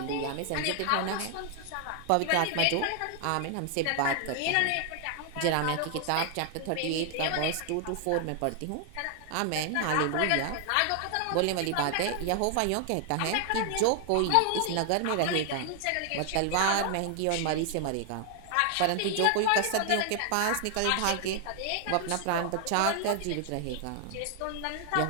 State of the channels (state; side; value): different; both; correlation 0.00